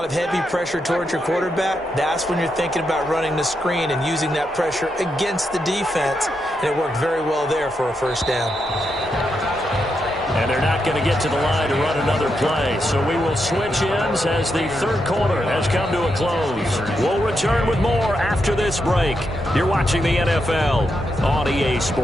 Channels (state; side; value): normal; both; correlation 0.83